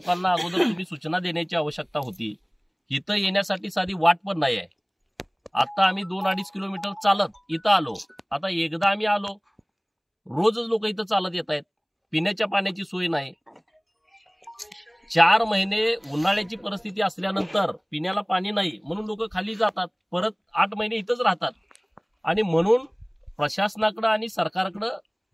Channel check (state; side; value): identical; both; correlation 1.00